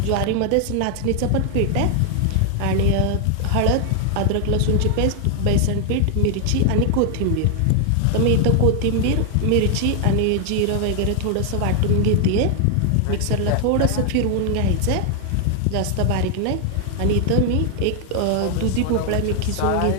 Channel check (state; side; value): different; both; correlation 0.00